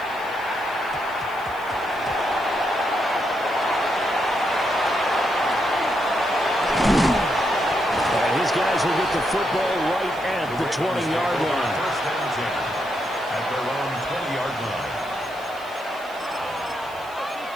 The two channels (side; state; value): right; noise; hiss, 23 dB below the sound